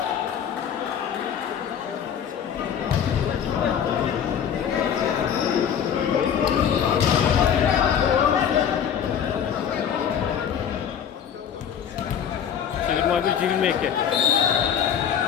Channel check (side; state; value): right; quieter; 8.5 dB